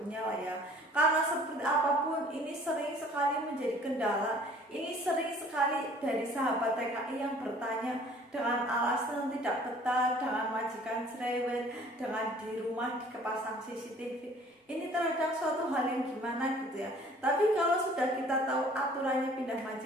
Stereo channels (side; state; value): both; normal; correlation 0.53